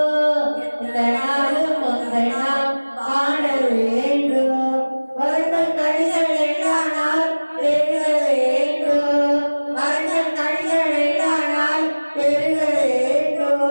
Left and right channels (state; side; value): inverted; both; correlation -1.00